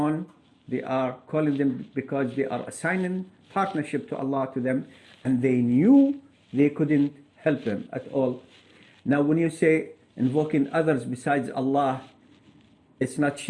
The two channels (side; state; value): both; identical; correlation 1.00